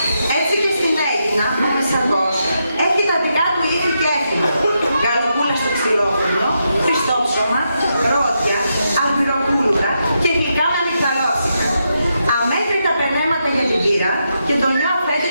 Έτσι και στην Αίγινα, ο Μεσαργός έχει τα δικά του ήθη και έθιμα. Γαλοπούλα στο ξυλόφρυνο, χριστόψωμα, ρόδια, αμπυροπούλουρα και γλυκά με αμυγδαλώσικα. Αμέτρητα περνέματα για την κύρα και τον νέο αφέντη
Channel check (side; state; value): both; inverted; correlation -0.83